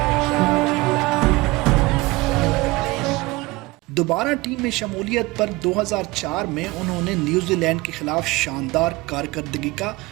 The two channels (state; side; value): quieter; left; 22.1 dB